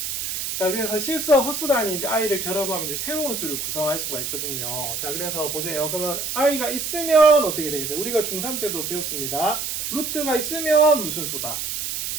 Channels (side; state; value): right; noise; hiss, 3 dB below the sound